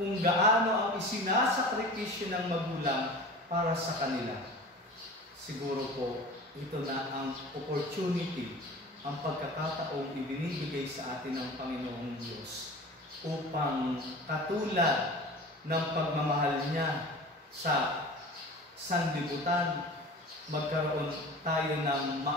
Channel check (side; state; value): both; normal; correlation 0.37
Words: gaano ang isinasakripisyo ng magulang para sa kanila? Siguro po, ito na ang opportunity, ang pagkakataong ibinibigay sa atin ng Panginoong Diyos upang katulad ng pagmamahal niya sa sanlibutan, magkaroon tayo ng